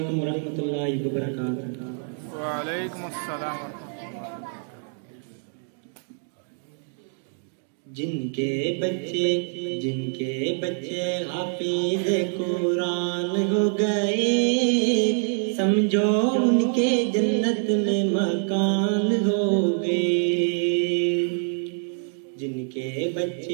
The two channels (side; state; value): left; silent; 58 dB below the other